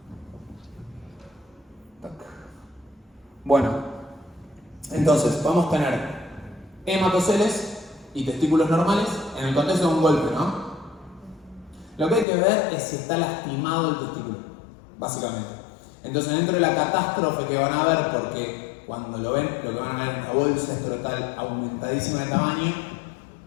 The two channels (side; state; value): right; drops out; at 12.2 s